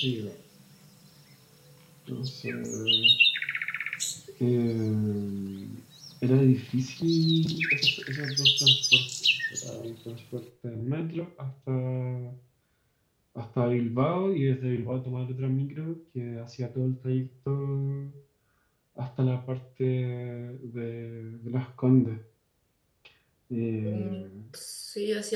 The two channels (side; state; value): both; identical; correlation 1.00